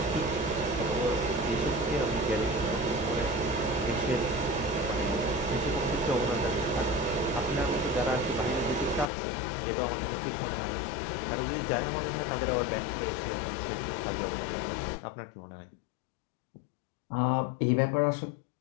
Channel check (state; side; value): drops out; right; at 9.1 s